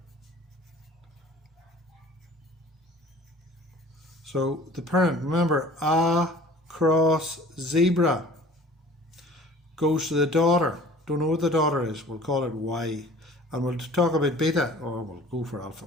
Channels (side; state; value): both; normal; correlation 0.47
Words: So the parent, remember, A cross zebra goes to the daughter. Don't know what the daughter is. We'll call it Y. And we'll talk about beta, or we'll go for alpha